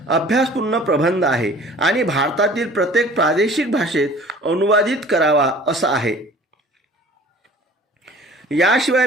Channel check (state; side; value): normal; both; correlation 0.48